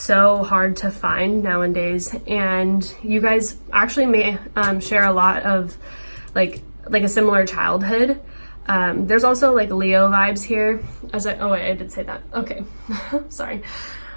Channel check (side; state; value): both; inverted; correlation -1.00